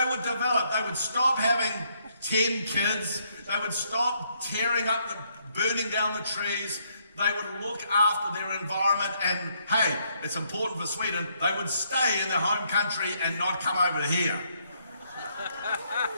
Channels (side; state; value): both; inverted; correlation -0.71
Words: would develop. They would stop having 10 kids. They would stop burning down the trees. They would look after their environment, and hey, it's important for Sweden, they would stay in their home country and not come over here.